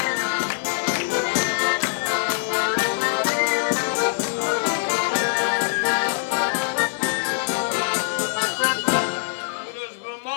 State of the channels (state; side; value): silent; right; digital silence